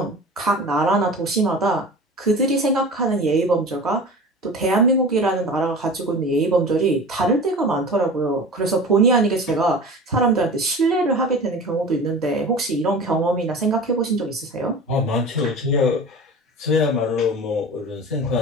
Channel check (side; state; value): both; normal; correlation 0.36